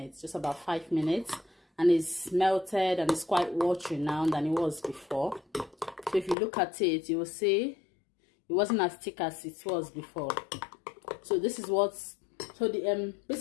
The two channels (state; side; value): drops out; right; at 6.4 s